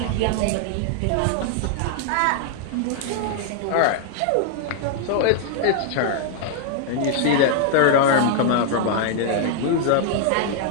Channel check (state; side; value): different; both; correlation 0.00